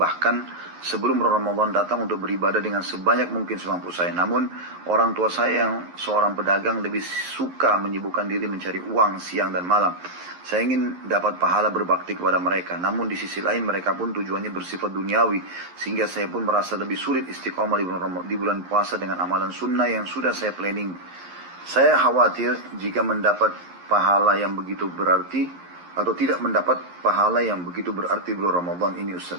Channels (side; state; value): left; late; 11 ms